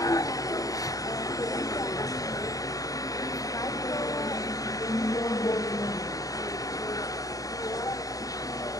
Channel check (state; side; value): late; right; 0.17 ms